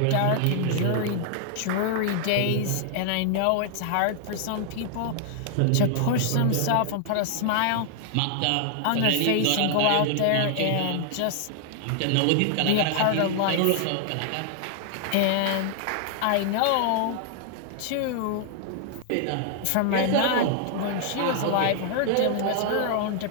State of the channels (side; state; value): both; different; correlation 0.00